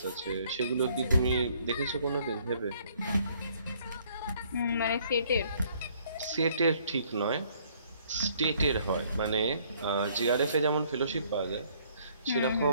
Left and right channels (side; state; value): both; inverted; correlation -0.63